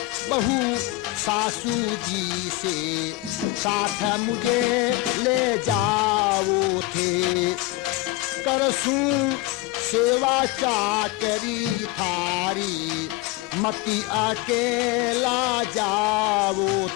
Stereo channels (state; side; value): quieter; right; 18.5 dB